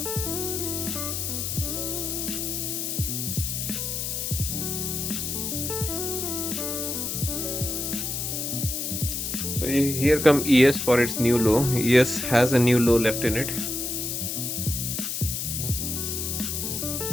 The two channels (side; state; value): left; noise; hiss, 2 dB below the sound